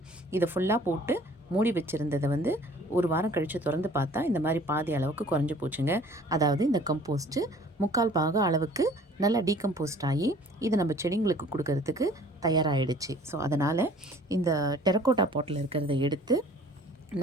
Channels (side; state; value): both; normal; correlation 0.52